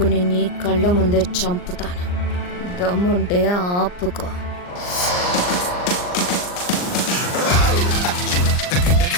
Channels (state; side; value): late; right; 39 ms